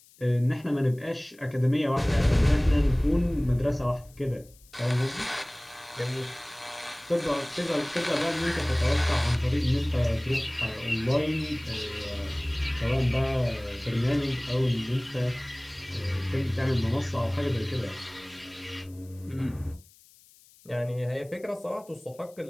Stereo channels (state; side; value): noise; left; hiss, 27 dB below the sound